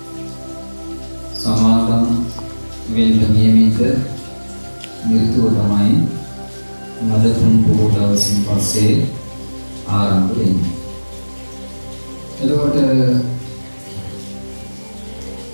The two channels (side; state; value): both; inverted; correlation -1.00